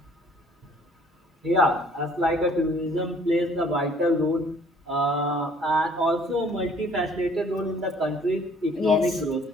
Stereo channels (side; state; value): both; normal; correlation 0.57